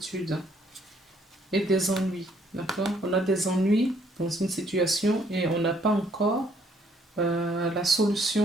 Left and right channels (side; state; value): both; normal; correlation 0.66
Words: et des ennuis. D'accord. On a des ennuis dans une situation et on n'a pas encore la